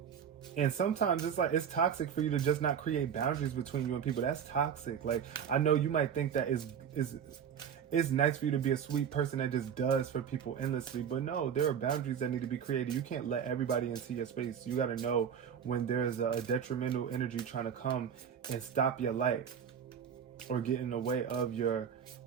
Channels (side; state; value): left; quieter; 8.0 dB